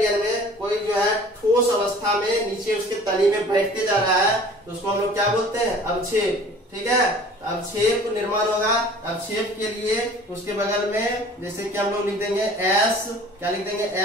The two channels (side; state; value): both; normal; correlation 0.47